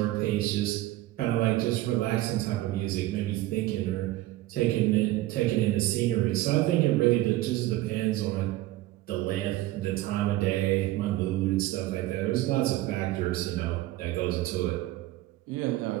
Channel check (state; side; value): quieter; left; 16.3 dB